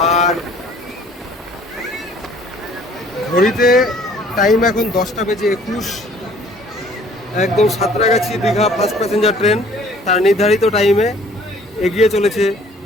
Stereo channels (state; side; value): normal; both; correlation 0.55